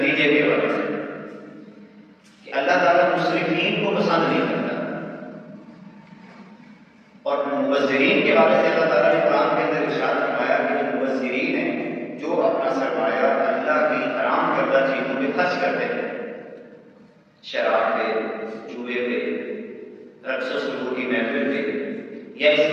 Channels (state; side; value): identical; both; correlation 1.00